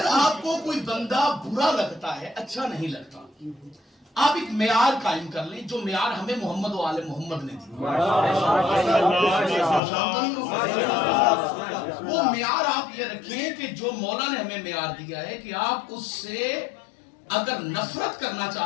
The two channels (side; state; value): right; drops out; at 9.8 s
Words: आपको कोई बंदा बुरा लगता है, अच्छा नहीं लगता, आप एक मेयार कायम कर लें जो मेयार हमें मोहम्मद व आले मोहम्मद ने दी। वो मेयार आप ये रखें कि जो मौला ने हमें मेयार दिया है कि आप उससे अगर नफरत करना